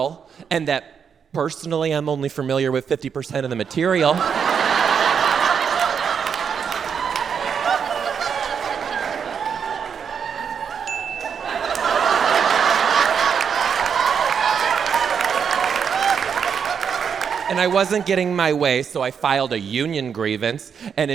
and that personally I'm only familiar with 50% of the material. And I wasn't getting my way, so I filed a union grievance, and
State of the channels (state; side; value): quieter; left; 7.0 dB